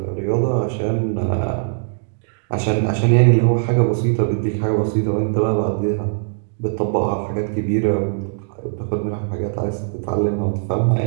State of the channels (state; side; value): silent; left; digital silence